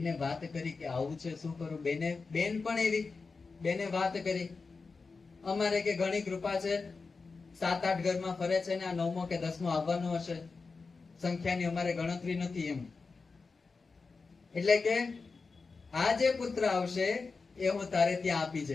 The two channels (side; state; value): right; quieter; 4.4 dB